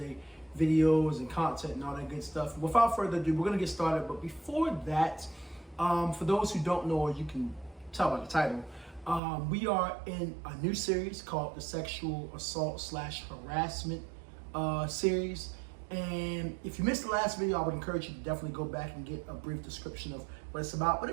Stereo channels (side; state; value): left; drops out; at 9.2 s